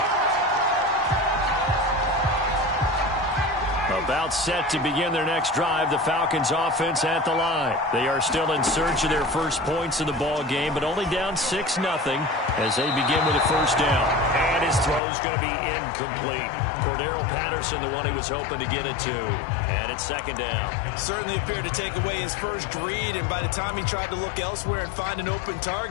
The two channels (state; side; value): drops out; right; at 15.0 s